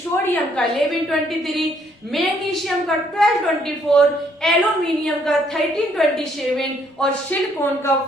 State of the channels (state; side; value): normal; both; correlation 0.68